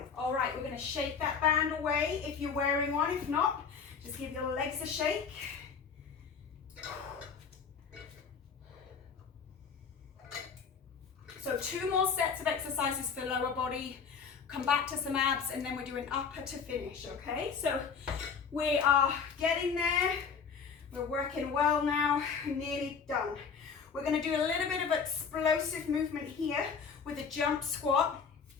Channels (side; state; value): right; quieter; 6.1 dB